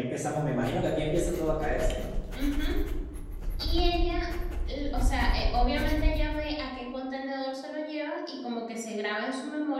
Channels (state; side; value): identical; both; correlation 1.00